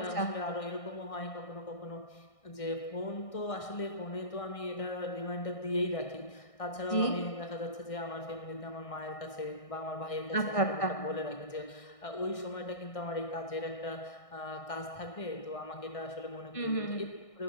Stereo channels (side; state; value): right; late; 1.6 ms